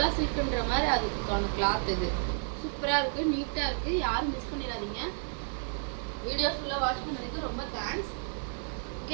சில்க்ன்ற மாதிரி அதுக்கான கிளாத் இது சூப்பரா இருக்கு, நீட்டா இருக்கு. யாரும் மிஸ் பண்ணிடாதீங்க. வீடியோ ஃபுல்லா வாட்ச் பண்ணதுக்கு ரொம்ப தேங்க்ஸ். ஓகே,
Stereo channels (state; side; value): silent; left; 57 dB below the other